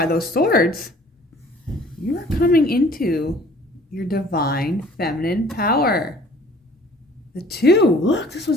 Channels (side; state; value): both; normal; correlation 0.53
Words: those swords. You are coming into your divine feminine power. The 2. Look, this